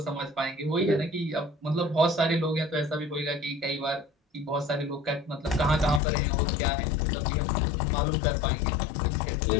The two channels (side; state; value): right; drops out; at 6.0 s